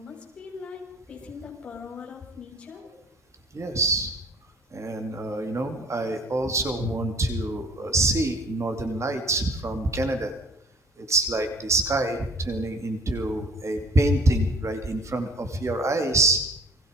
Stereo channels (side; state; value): both; normal; correlation 0.52